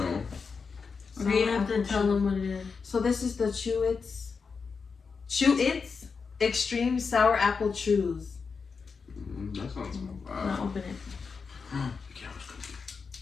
Okay, you have to tell them what it is. So this is the Chew-Its Extreme Sour Apple Chews. That sounds Now bad. open it. The camera's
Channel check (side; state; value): right; quieter; 5.2 dB